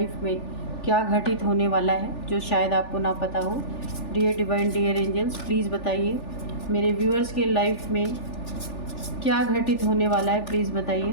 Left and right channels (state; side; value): late; right; 3.4 ms